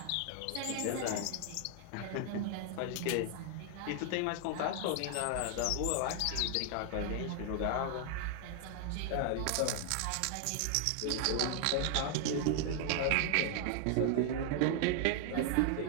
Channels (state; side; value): different; both; correlation 0.00